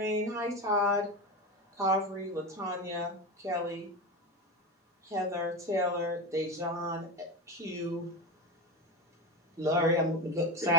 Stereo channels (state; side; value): normal; both; correlation 0.21